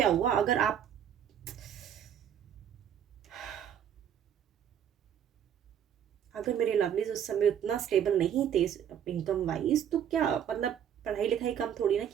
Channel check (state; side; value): quieter; left; 9.2 dB